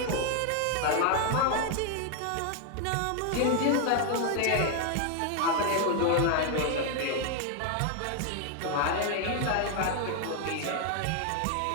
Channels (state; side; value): different; both; correlation 0.00